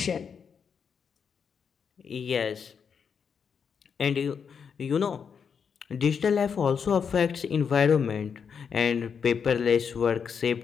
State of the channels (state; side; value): quieter; right; 6.7 dB